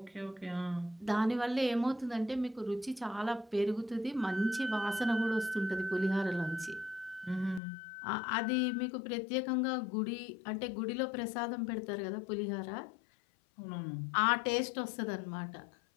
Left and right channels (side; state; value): right; drops out; at 7.6 s